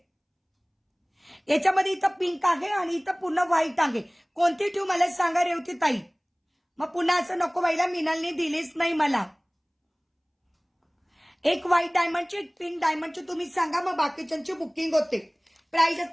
याच्यामध्ये इथं पिंक आहे आणि इथं पूर्ण व्हाईट आहे. कोणती ठेवू मला सांगा रेवती ताई. मग पुन्हा असं नको व्हायला मिनलने दिलीच नाही मला. एक व्हाईट डायमंडची एक पिंक डायमंडची तुम्ही सांगा मग बाकीच्यांची बुकिंग होते. प्राइस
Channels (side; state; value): both; identical; correlation 1.00